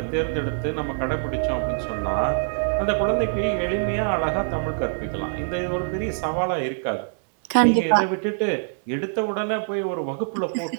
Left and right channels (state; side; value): silent; left; digital silence